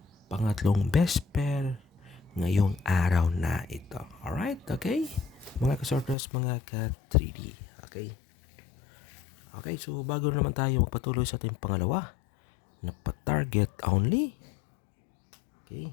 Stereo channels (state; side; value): drops out; right; at 6.2 s